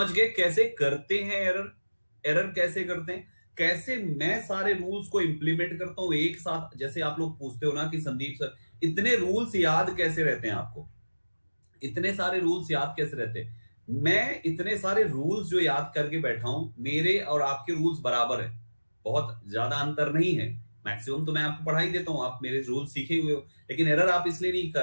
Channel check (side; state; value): both; inverted; correlation -1.00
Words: गए कैसे करते हैं एरर, एरर कैसे करते हैं, कैसे मैं सारे रूल्स को इंप्लीमेंट करता हूं एक साथ। जैसे आप लोग पूछते हो ना कि संदीप सर इतने रूल्स याद कैसे रहते हैं आपको, इतने सारे रूल्स याद कैसे रहते हैं। मैं इतने सारे रूल्स जो याद करके बैठा हूं, मेरे और आपके रूल्स बराबर है, बहुत ज्यादा अंतर नहीं है। मैक्सिमम तो मैं आपको पढ़ा ही देता हूं, आप मेरे रूल सीखे हुए हो। लेकिन एरर आप इसलिए